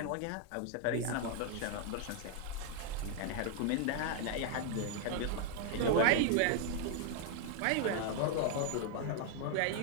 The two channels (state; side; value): different; both; correlation 0.01